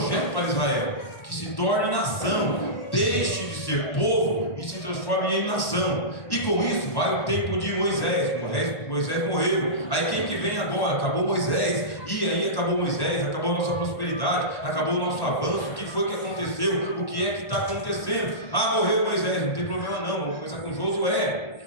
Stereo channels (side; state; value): right; late; 1.1 ms